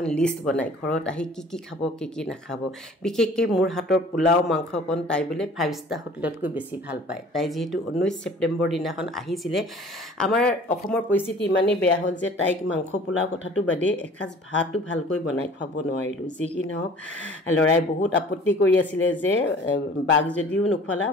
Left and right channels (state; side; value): normal; both; correlation 0.49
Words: লিষ্ট বনাই ঘৰত আহি কি খাব কি নাখাব বিশেষকৈ মোৰ হাতৰ পোলাও মাংসকণ তাই বোলে 5 ষ্টাৰ হোটেলতকৈ বেছি ভাল পায় তাই যেহেতু 19 ছেপ্টেম্বৰ দিনাখন আহিছিলে আমাৰ অসমৰ পৰিস্থিতি ইমানেই বেয়া হ'ল যে তাইক মাংস পোলাও কথাটো বাদে এসাঁজ ভাতো ভালকৈ বনাই খুৱাব নোৱাৰিলোঁ যি কি নহওক লৰাই বহুত আপত্তি কৰি আছিলে যে বাঘ যদিও নোখোৱালা